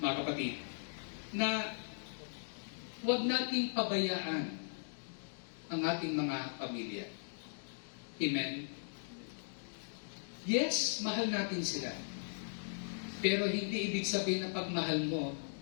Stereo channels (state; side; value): silent; right; digital silence